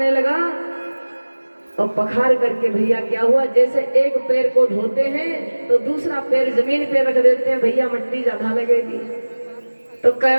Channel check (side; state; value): both; inverted; correlation -1.00